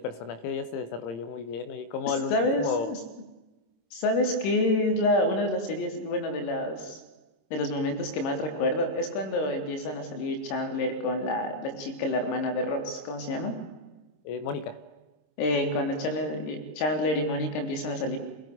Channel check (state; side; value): late; right; 26 ms